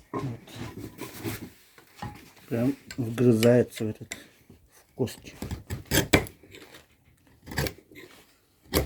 Вот. Прям вгрызается в этот в кости.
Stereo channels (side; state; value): both; identical; correlation 1.00